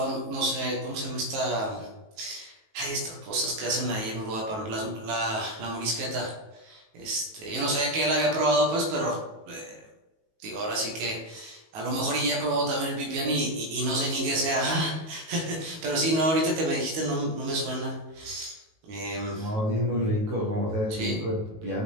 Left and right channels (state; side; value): late; left; 19 ms